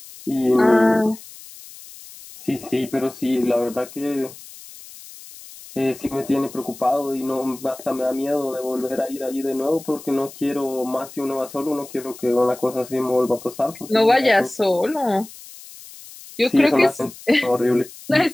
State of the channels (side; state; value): left; noise; hiss, 18 dB below the sound